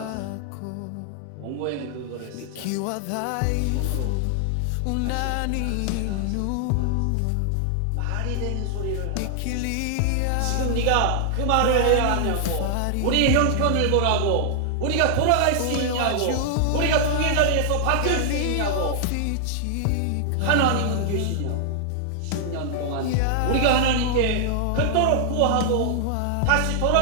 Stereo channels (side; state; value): both; different; correlation -0.01